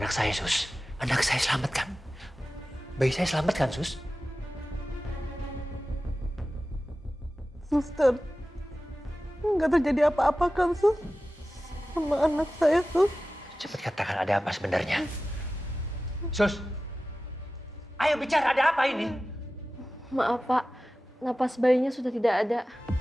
saya, Sus? Anak saya selamat kan? Bayi saya selamat kan, Sus? Suster, nggak terjadi apa-apa kan, Sus? Sama anak saya, Sus. Cepat katakan ada apa sebenarnya. Sus, ayo bicara, ada apa ini? Maaf Pak, napas bayinya sudah tidak ada.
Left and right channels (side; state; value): both; normal; correlation 0.95